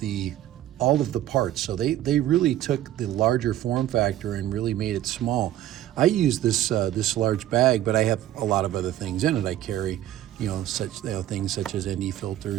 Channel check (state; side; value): quieter; left; 13.0 dB